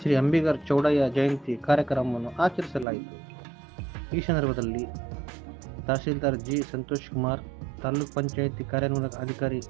ಶ್ರೀ ಅಂಬಿಗರ ಚೌಡಯ್ಯ ಜಯಂತಿ ಕಾರ್ಯಕ್ರಮವನ್ನು ಆಚರಿಸಲಾಯಿತು. ಈ ಸಂದರ್ಭದಲ್ಲಿ ತಹಸೀಲ್ದಾರ್ ಜಿ. ಸಂತೋಷ್ ಕುಮಾರ್, ತಾಲೂಕು ಪಂಚಾಯಿತಿ ಕಾರ್ಯನಿರ್ವಾಹಕ ಅಧಿಕಾರಿ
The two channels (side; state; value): left; drops out; at 2.9 s